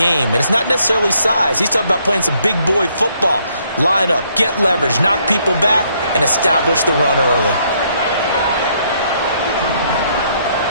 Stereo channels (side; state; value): both; inverted; correlation -0.70